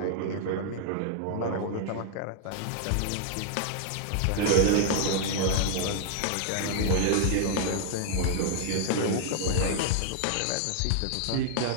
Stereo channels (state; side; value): different; both; correlation -0.01